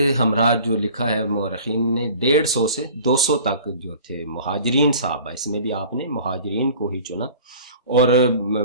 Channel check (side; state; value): both; inverted; correlation -0.45